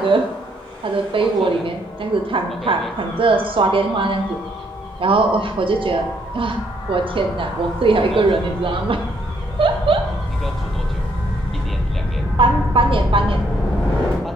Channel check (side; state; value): both; normal; correlation 0.71